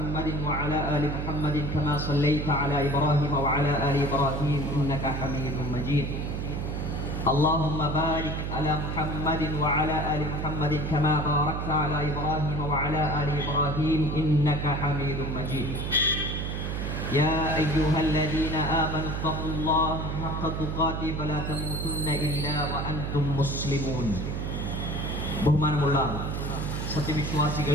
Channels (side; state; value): right; noise; hum, 3 dB below the sound